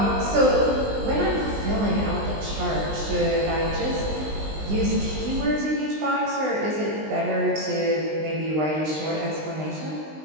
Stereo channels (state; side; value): late; left; 20 ms